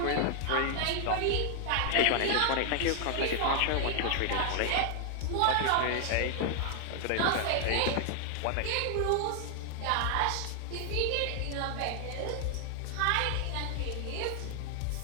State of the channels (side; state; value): both; different; correlation 0.00